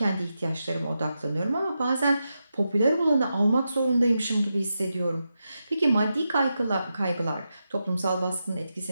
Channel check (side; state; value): both; inverted; correlation -0.88